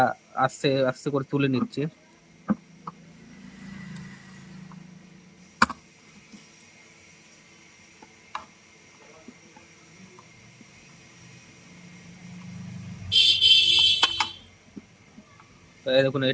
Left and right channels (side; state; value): both; identical; correlation 1.00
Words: আস্তে আস্তে করে তুলে নিচ্ছি। তো এই দেখুন